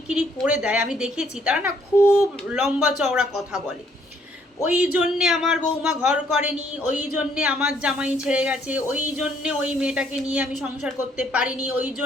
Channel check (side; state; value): both; normal; correlation 0.67